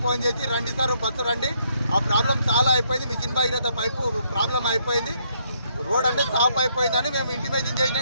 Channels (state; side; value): inverted; both; correlation -0.72